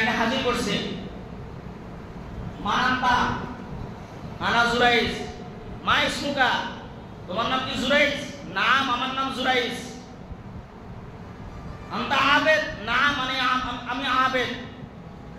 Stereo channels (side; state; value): both; identical; correlation 1.00